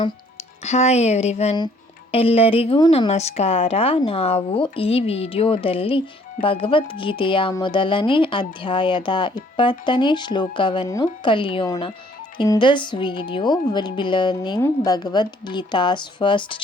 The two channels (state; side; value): normal; both; correlation 0.61